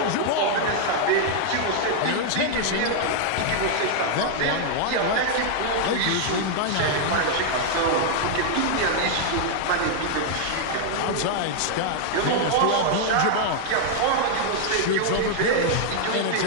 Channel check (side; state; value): both; different; correlation 0.00